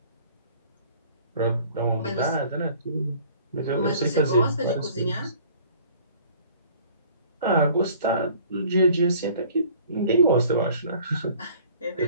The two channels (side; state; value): both; inverted; correlation -0.52